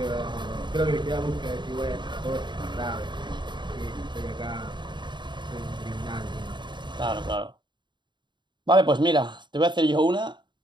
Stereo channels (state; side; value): late; left; 0.22 ms